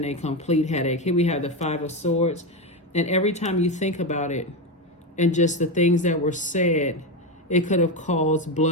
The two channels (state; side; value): normal; both; correlation 0.13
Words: a complete headache. Here we have the Five of Swords, and every time you think about it and just the things that were said, it could have caused